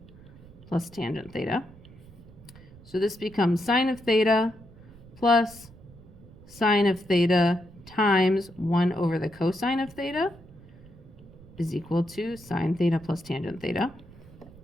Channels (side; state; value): right; noise; rumble, 21 dB below the sound